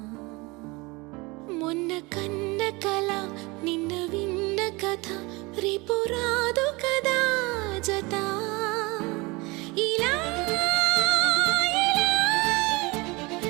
మొన్న కన్న కల నిన్న విన్న కథ రేపు రాదు కదా జత. ఇలా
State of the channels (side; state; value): left; quieter; 24.8 dB